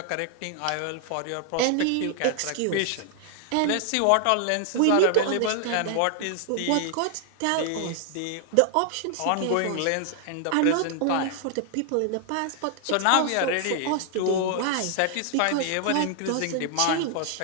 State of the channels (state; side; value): different; both; correlation 0.00